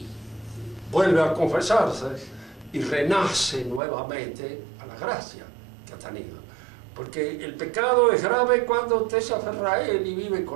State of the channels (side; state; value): left; drops out; at 3.8 s